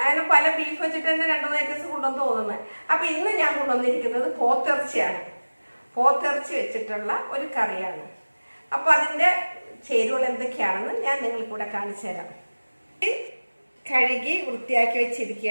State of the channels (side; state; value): both; inverted; correlation -1.00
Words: അങ്ങനെ പല ബീഫ് വെച്ചിട്ട് തന്നെ 2-3 ഐറ്റംസ് കൊണ്ടുവന്ന് തോന്നുന്നത്. അപ്പം ഇന്ന് ഞാൻ കൊണ്ടുവന്നിരിക്കുന്നത് പോത്തിറച്ചിയാണ്. പോത്തിറച്ചി വെച്ചിട്ടുള്ള ഒരു കറിയാണ്. അപ്പോൾ അതിൻ്റെ ചേരുവകൾ എന്തൊക്കെയാണെന്ന് ഞാൻ നിങ്ങൾക്ക് കൂടെ കാണിച്ചു തരാം. കഴുകി വൃത്തിയാക്കി